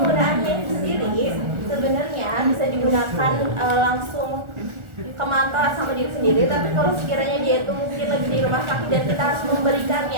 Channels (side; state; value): left; late; 1.4 ms